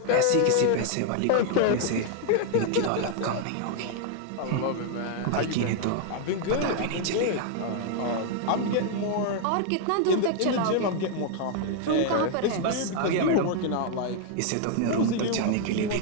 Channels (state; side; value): different; both; correlation 0.00